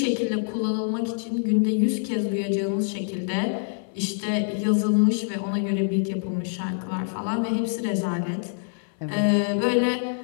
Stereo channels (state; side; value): silent; right; 61 dB below the other